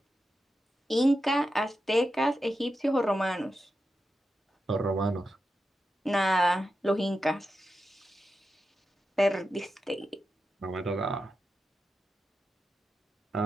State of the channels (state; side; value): normal; both; correlation 0.89